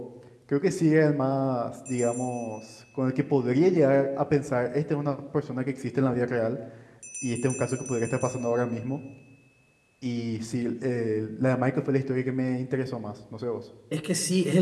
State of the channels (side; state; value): both; identical; correlation 1.00